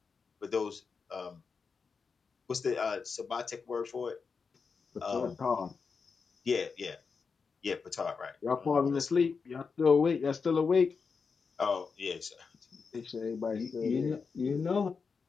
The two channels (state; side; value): quieter; right; 5.3 dB